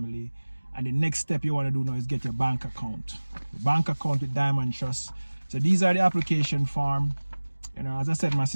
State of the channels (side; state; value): both; inverted; correlation -1.00